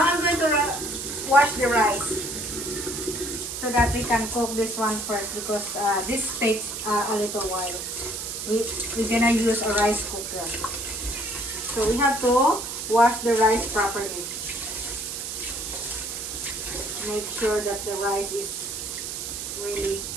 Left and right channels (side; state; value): right; noise; hiss, 6 dB below the sound